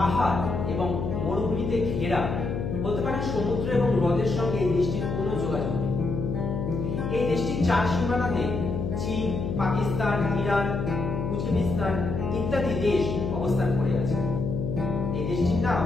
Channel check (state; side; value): noise; left; hum, 3 dB below the sound